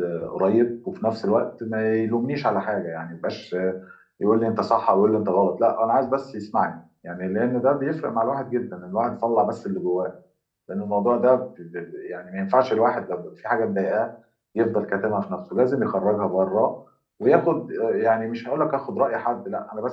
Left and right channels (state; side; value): identical; both; correlation 1.00